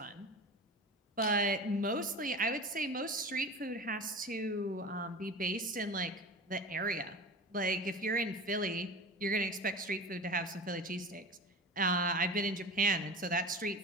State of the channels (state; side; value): normal; both; correlation 0.33